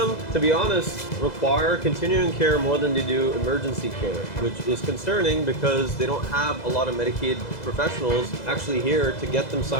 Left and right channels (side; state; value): right; late; 2.0 ms